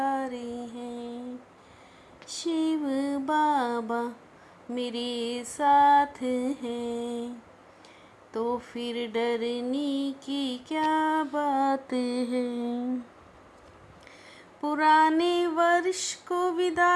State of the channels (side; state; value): both; identical; correlation 1.00